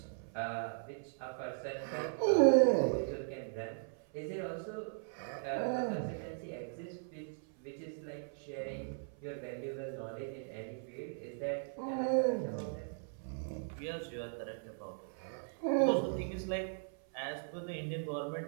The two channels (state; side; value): silent; left; 52 dB below the other